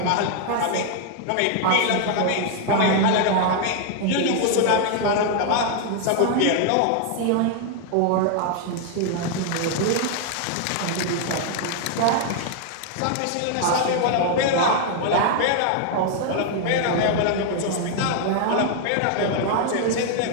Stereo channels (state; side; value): different; both; correlation 0.00